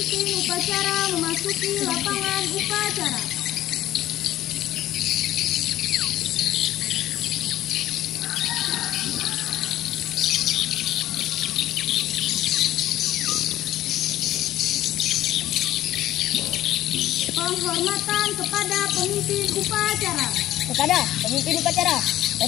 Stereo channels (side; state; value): right; quieter; 13.8 dB